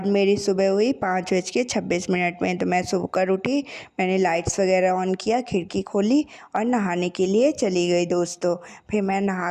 मेरी सुबह हुई 5:26 में। तो मैं सुबह कर उठी, मैंने लाइट्स वगैरह ऑन किया, खिड़की खोली और नहाने के लिए चली गई दोस्तों। फिर मैं नहा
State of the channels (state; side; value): identical; both; correlation 1.00